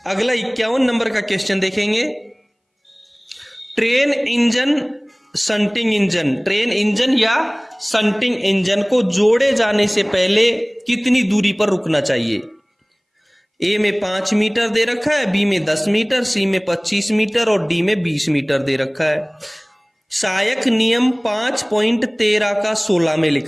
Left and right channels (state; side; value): identical; both; correlation 1.00